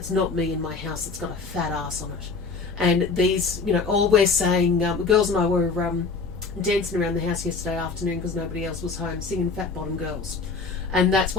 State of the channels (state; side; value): quieter; right; 4.6 dB